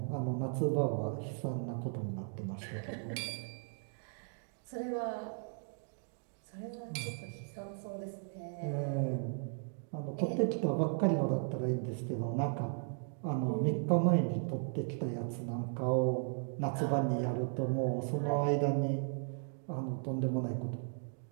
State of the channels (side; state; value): left; silent; 54 dB below the other